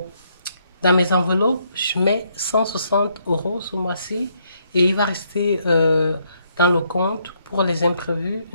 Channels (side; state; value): both; inverted; correlation -0.73